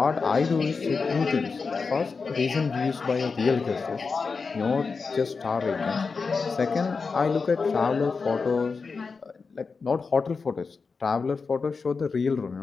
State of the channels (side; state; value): right; quieter; 4.8 dB